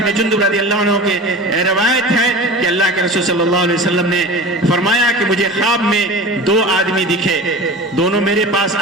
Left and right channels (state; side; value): normal; both; correlation 0.34